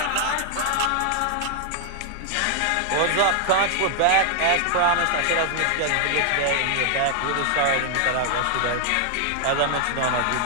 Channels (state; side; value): different; both; correlation 0.00